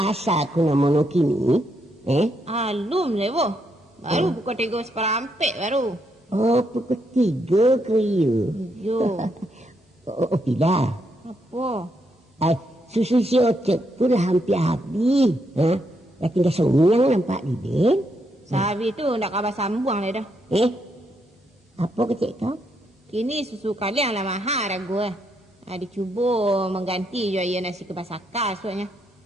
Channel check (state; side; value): normal; both; correlation 0.78